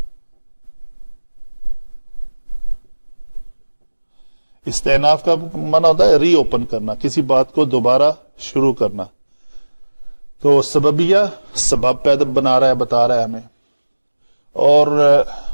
استئناف کا معنی ہوتا ہے ری اوپن کرنا, کسی بات کو دوبارہ شروع کرنا. تو سببیہ سبب پیدا بتا رہا ہے ہمیں. اور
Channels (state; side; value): inverted; both; correlation -1.00